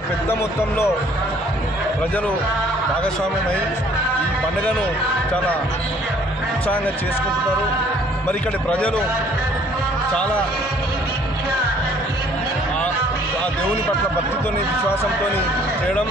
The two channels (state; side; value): normal; both; correlation 0.58